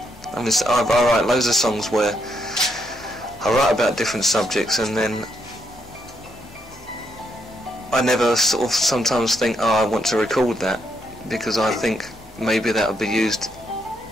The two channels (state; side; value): normal; both; correlation 0.77